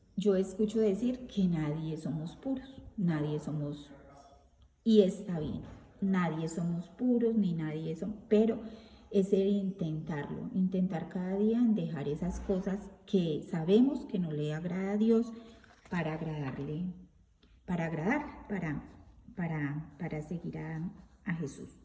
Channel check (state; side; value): identical; both; correlation 1.00